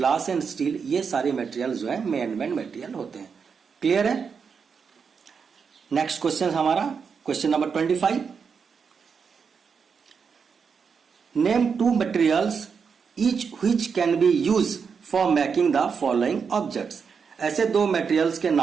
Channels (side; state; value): left; quieter; 6.0 dB